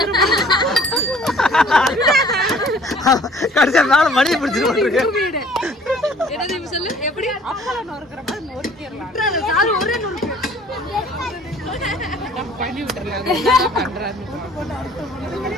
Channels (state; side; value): normal; both; correlation 0.54